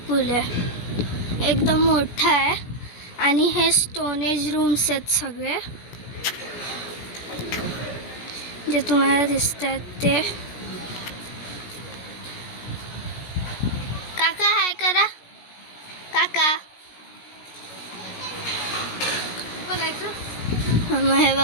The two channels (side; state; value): right; late; 16 ms